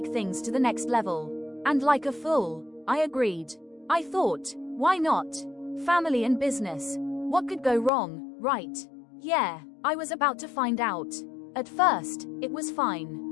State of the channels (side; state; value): right; drops out; at 7.9 s